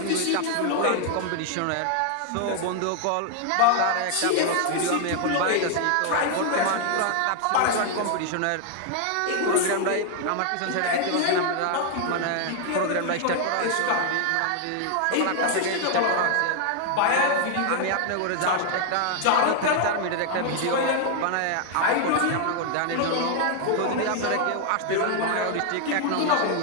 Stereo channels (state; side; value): different; both; correlation 0.00